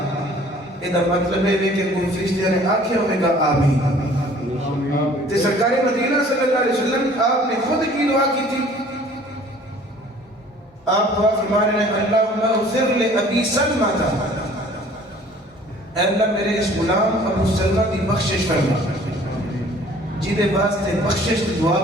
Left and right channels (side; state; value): both; normal; correlation 0.52